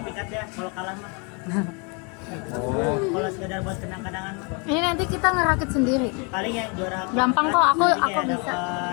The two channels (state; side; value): quieter; right; 33.4 dB